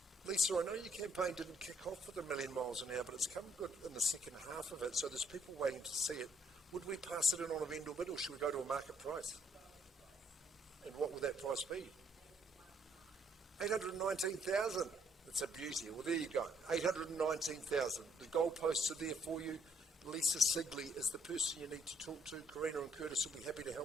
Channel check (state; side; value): normal; both; correlation 0.69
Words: Lisa, I know your campaign didn't kick off with 1,000,000 miles an hour, but it's come good in the second half of it, so there's people waiting to see it. Would we pass it in on a vendor bid, or should we go to a market price? We'll go with the price, thanks. And what would that price be? 819,000. That's a beauty. Well, there you go. 819,000. The goalposts are there for you. Lisa Sigley is the person you need to talk to. Karina and Curtis will be happy to